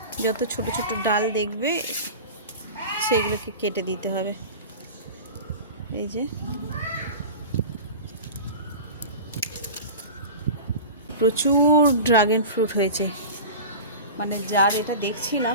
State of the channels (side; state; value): both; inverted; correlation -0.32